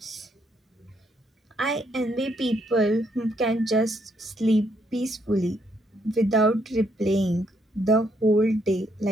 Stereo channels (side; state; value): both; normal; correlation 0.73